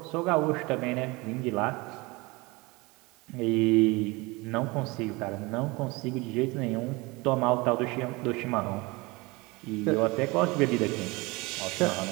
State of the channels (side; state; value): left; quieter; 24.4 dB